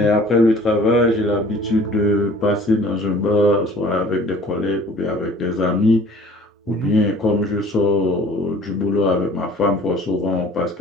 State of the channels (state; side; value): normal; both; correlation 0.49